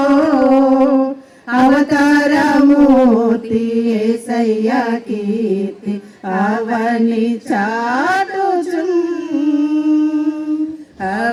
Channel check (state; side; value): identical; both; correlation 1.00